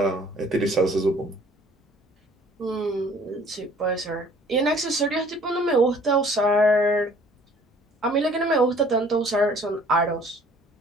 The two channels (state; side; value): normal; both; correlation 0.54